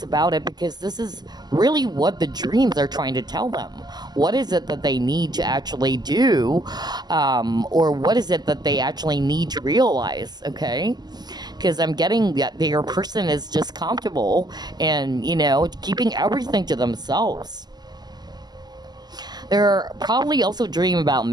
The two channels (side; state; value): left; late; 0.20 ms